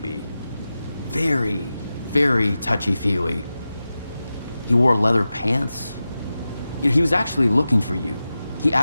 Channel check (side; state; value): both; inverted; correlation -0.94